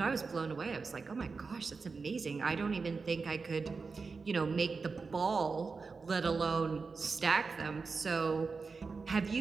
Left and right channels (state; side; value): quieter; left; 4.6 dB